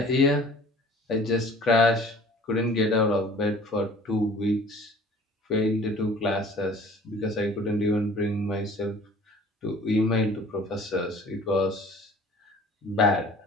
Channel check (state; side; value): normal; both; correlation 0.49